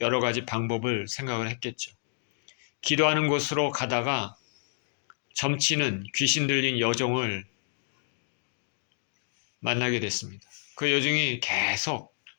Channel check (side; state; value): right; silent; digital silence